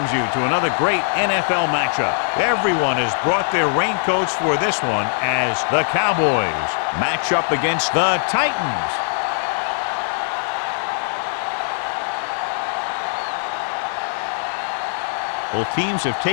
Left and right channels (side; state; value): right; silent; digital silence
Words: you to another great NFL matchup. Everyone has brought their raincoats for this one as the Cowboys match up against the Titans. Both teams have